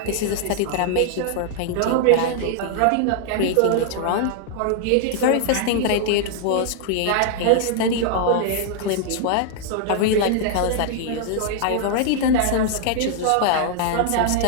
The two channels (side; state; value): both; different; correlation -0.01